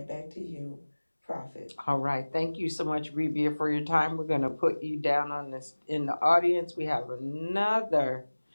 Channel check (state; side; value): inverted; both; correlation -1.00